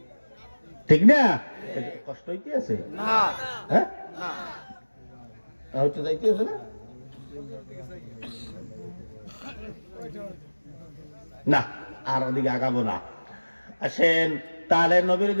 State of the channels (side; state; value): both; inverted; correlation -1.00